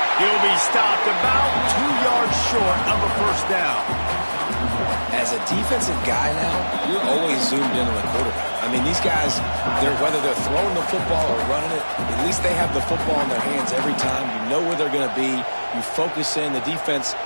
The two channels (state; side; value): inverted; both; correlation -1.00